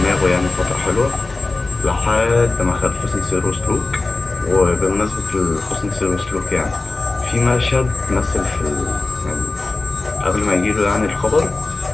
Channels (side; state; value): right; quieter; 3.3 dB